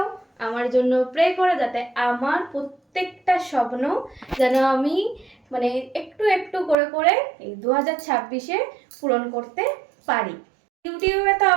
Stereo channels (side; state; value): left; drops out; at 6.8 s